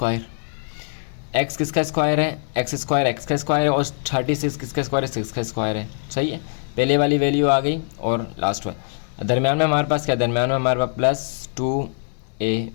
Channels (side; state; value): right; silent; 64 dB below the other